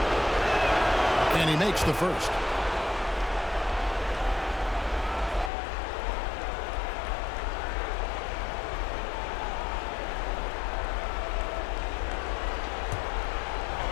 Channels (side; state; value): right; drops out; at 5.5 s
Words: And he makes the first.